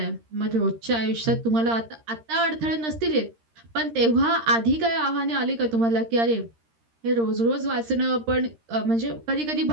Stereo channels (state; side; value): late; left; 13 ms